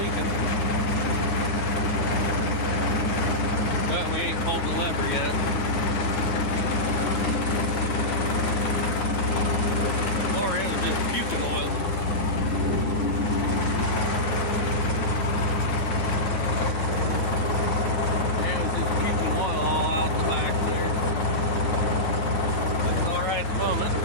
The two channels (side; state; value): right; late; 10 ms